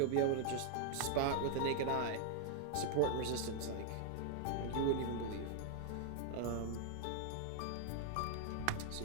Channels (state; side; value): different; both; correlation 0.00